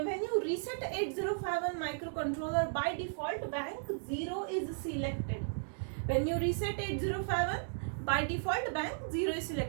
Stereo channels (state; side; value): silent; left; digital silence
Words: you reset 8051 microcontroller, by default bank 0 is selected. When you reset 8051, by default bank 0 is